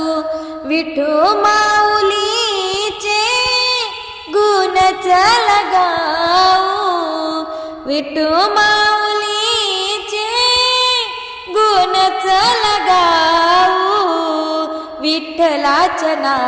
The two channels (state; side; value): identical; both; correlation 1.00